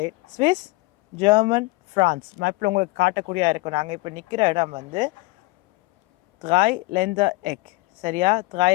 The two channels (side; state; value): right; quieter; 22.8 dB